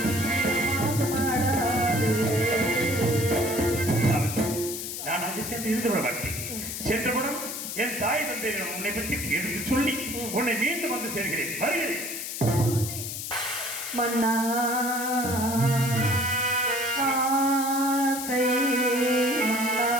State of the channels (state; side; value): noise; left; hiss, 6 dB below the sound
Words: சென்று இருந்து விட மாட்டேன். சென்றவுடன் என் தாய் தந்தையிடம் உன்னை பற்றி எடுத்து சொல்லி உன்னை மீண்டும் வந்து சேர்கிறேன். வருகிறேன். மன்னா ஆசை மன்னா